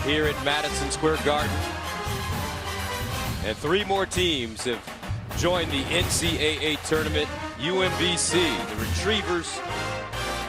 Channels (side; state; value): both; identical; correlation 1.00